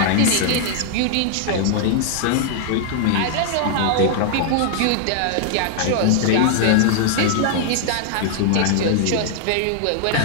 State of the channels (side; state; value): both; different; correlation -0.01